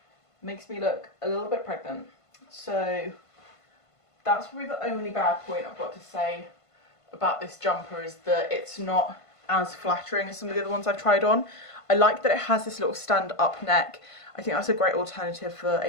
Makes me look a little bit pregnant. So that's probably the only bad point I've got to say about this jumper, is that it's not as flattering as some of the other ones I've tried on. I like that it has this little stand up neck. I think that's a great alternative for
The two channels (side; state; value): right; late; 1.5 ms